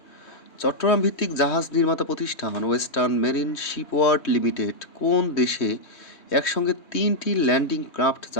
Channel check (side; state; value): right; late; 3.1 ms